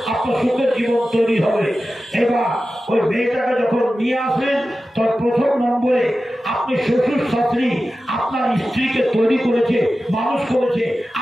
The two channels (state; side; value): normal; both; correlation 0.94